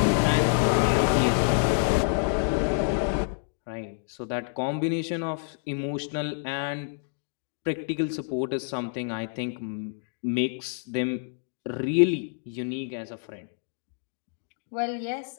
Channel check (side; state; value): right; silent; digital silence